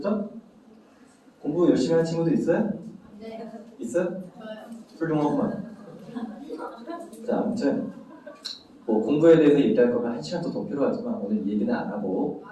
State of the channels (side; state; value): both; identical; correlation 1.00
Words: 공부 열심히 하는 친구도 있어요? 네. 있어요? 훌륭하구만. 자, 아무튼 뭐 공부에 대해서 얘기할 거면 1시간도 더 필요하지만 오늘 얘기는 안 하고